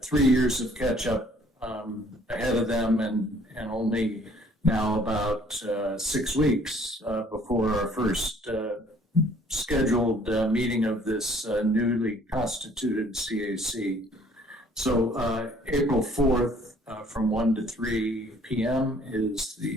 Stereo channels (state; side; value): normal; both; correlation 0.58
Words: 3 years of catch up ahead of them and only now about 6 weeks before our first scheduled meeting of this newly constituted CAC. So April 4th from 1 to 3 p.m. is